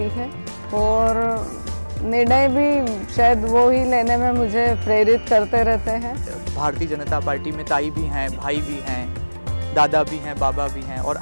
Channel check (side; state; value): both; inverted; correlation -1.00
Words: है और निर्णय भी शायद वो ही लेने में मुझे प्रेरित करते रहते हैं। भारतीय जनता पार्टी में ताई भी हैं, भाई भी हैं, दादा भी हैं, बाबा भी हैं और